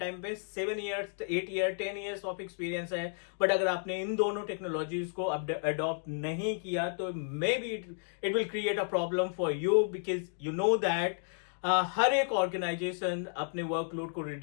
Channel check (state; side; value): silent; right; digital silence